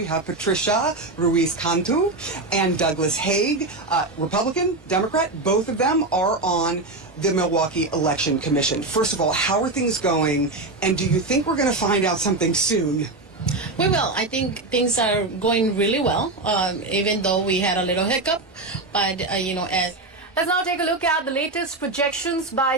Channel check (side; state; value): left; quieter; 3.1 dB